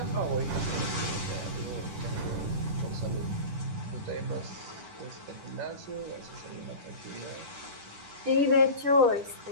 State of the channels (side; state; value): left; late; 10 ms